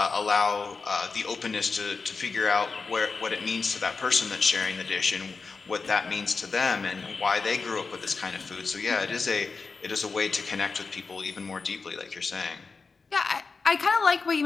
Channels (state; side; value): quieter; right; 4.6 dB